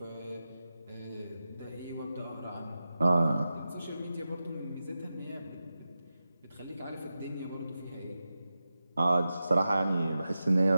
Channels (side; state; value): both; inverted; correlation -0.92